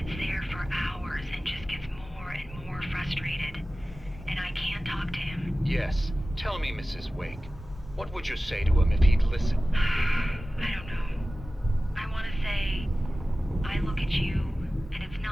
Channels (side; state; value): both; normal; correlation 0.96